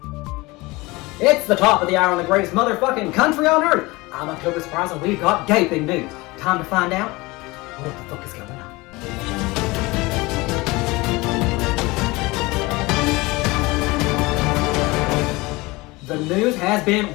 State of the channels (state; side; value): quieter; right; 22.7 dB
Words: It's the top of the hour on the greatest motherfucking country on earth. I'm October Surprise and we've got gaping news. Time to find out what the fuck is going on. The news has